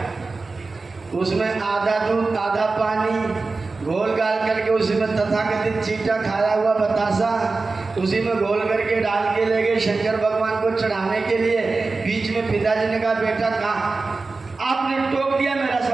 उसमें आधा दूध आधा पानी घोल गाल करके उसी में तथाकथित चीटा खाया हुआ बतासा उसी में घोल करके डाल के ले गए शंकर भगवान को चढ़ाने के लिए। बीच में पिताजी ने कहा, बेटा कहाँ आपने टोक दिया, मेरा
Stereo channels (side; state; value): left; quieter; 3.8 dB